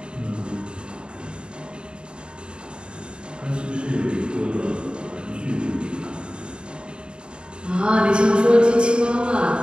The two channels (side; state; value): left; late; 0.052 ms